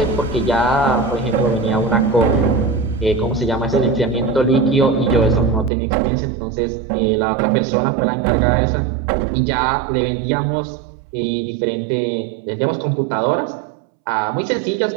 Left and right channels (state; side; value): drops out; left; at 5.7 s